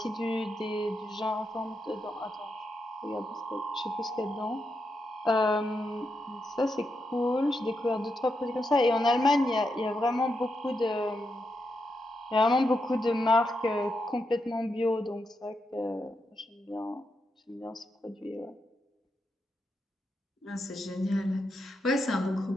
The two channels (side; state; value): both; normal; correlation 0.84